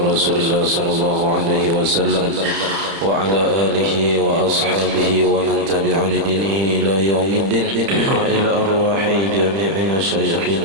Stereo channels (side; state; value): left; late; 31 ms